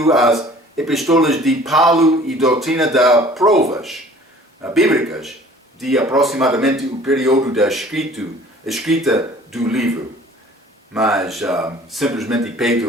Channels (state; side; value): normal; both; correlation 0.50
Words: às epístolas de Paulo e doutrina das provas bíblicas de aproximadamente o período da escrita do livro. Mas simplesmente